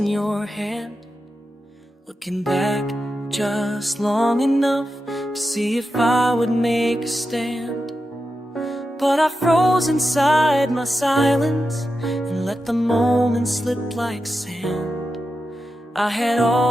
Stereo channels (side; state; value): both; normal; correlation 0.90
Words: your hand, looking back just long enough to see if I would make a stand. But I froze inside my silence and let the moment slip like sand. I had